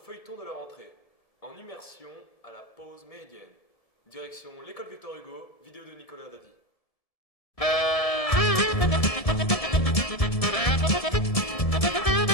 de la rentrée. En immersion à la pause méridienne. Direction l'école Victor Hugo, vidéo de Nicolas Dadi.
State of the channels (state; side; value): late; right; 1.7 ms